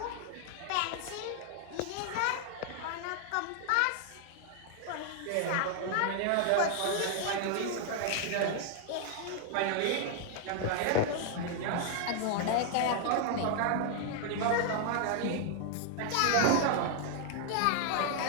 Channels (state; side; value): different; both; correlation 0.00